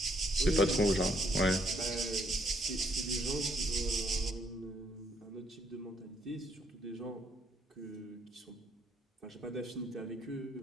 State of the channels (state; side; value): normal; both; correlation 0.70